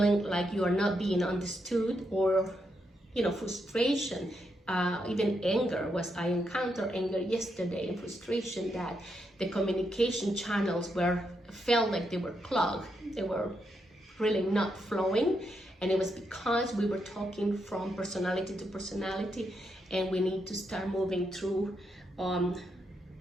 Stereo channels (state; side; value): normal; both; correlation 0.81